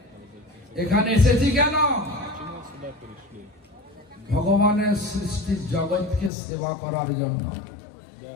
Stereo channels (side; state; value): right; drops out; at 6.3 s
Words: এখানে এসেছি কেন? Почему сюда пришли? ভগবানের সৃষ্টির জগৎকে সেবা করার জন্য। Я,